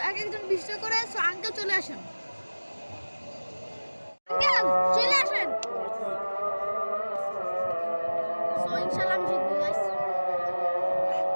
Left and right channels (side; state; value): both; inverted; correlation -1.00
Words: এক একজন 20 টাকা করে। সো আঙ্কেল চলে আসেন। আঙ্কেল চলে আসেন। সো ইনশাআল্লাহ আমি জিতবো গাইস।